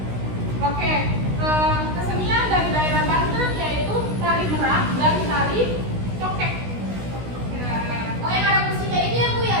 Oke, kesenian dari daerah Banten yaitu tari merak dan tari cokek. Oh, yang ada musiknya ini ya, Bu, ya?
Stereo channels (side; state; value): left; late; 16 ms